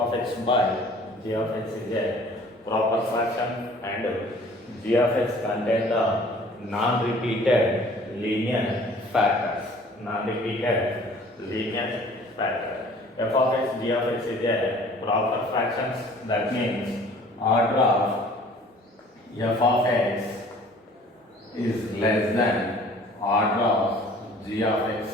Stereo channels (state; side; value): normal; both; correlation 0.51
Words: x by g of x is a proper fraction, and g of x contain the non-repeated linear factors. Non-repeated linear factor. F of x, g of x is a proper fractions. That means order of f of x is less than order of g of